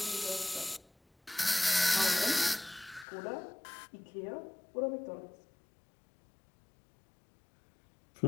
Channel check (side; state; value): right; drops out; at 3.1 s